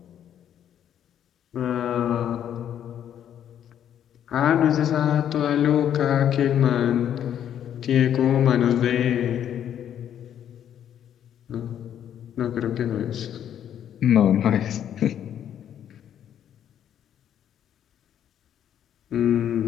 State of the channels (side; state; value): right; quieter; 9.9 dB